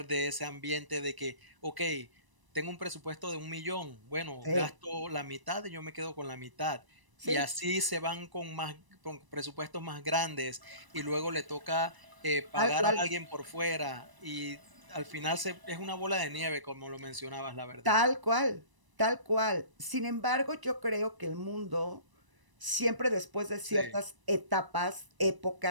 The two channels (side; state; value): left; late; 1.0 ms